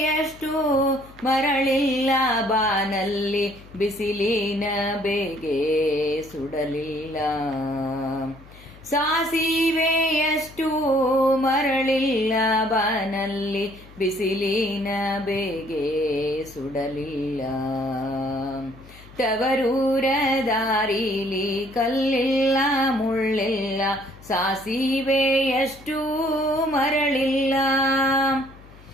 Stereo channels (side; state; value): left; noise; hum, 22 dB below the sound